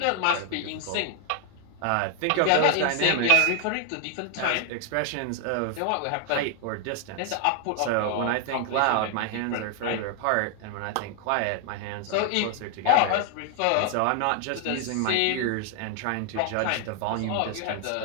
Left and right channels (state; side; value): different; both; correlation 0.00